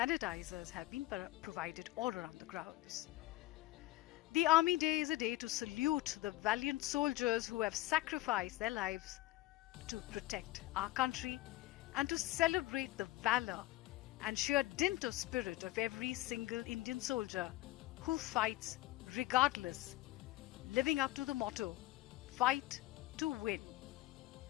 have been provided all around the grounds. The Army Day is a day to salute the valiant soldiers who have sacrificed their lives to protect our country and to celebrate the valor and sheer dint of spirit of every single Indian soldier who fights regardless, living up to the motto, fight to win.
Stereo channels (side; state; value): right; quieter; 17.7 dB